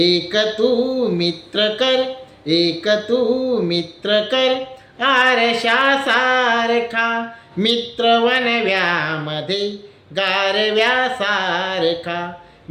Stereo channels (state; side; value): identical; both; correlation 1.00